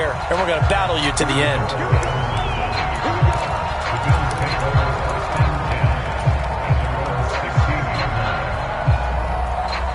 and we're going to battle you to the end.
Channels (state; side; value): identical; both; correlation 1.00